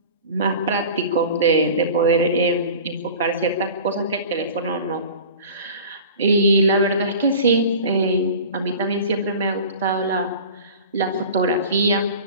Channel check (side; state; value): both; inverted; correlation -0.39